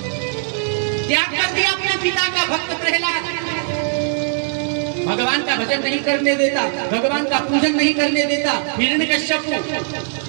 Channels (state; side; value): silent; left; digital silence